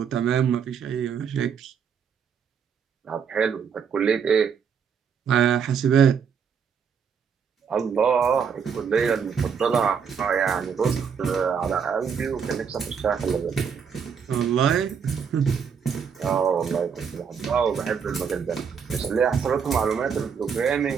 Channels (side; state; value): left; quieter; 6.8 dB